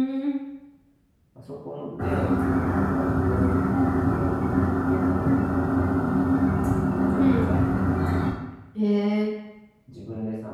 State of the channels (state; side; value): identical; both; correlation 1.00